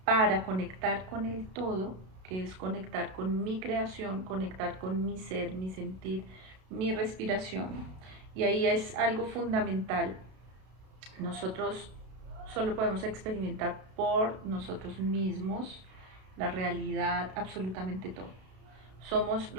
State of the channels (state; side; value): late; left; 32 ms